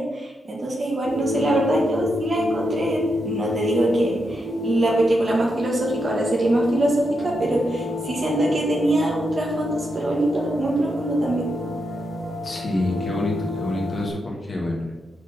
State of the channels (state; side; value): normal; both; correlation 0.84